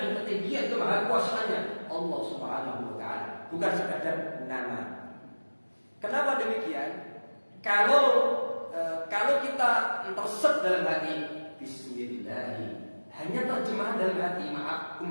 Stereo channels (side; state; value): both; inverted; correlation -1.00